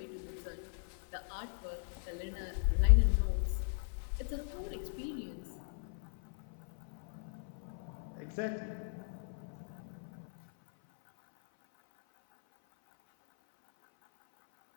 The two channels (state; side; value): silent; right; 52 dB below the other